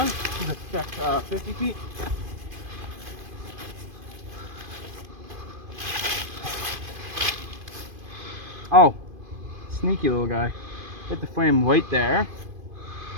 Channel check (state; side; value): late; left; 2.5 ms